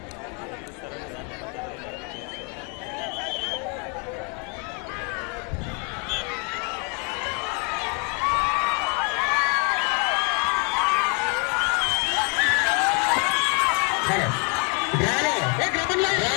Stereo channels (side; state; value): right; quieter; 33.7 dB